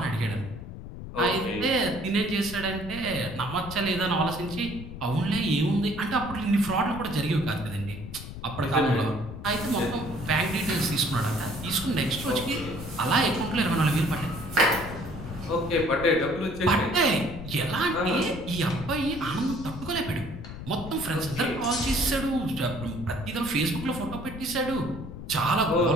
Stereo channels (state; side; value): noise; left; rumble, 11 dB below the sound